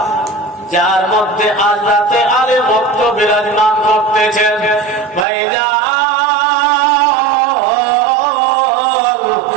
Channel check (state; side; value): drops out; left; at 5.2 s